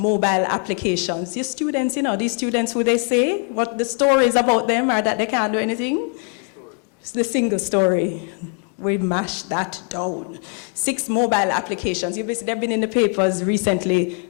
applications. Your students, you know, these students who they say, what the stories about them are that they can't do anything. It's the single story. We mashed that down. 6 mobile applications. They've been in the papers recently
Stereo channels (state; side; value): quieter; right; 38.4 dB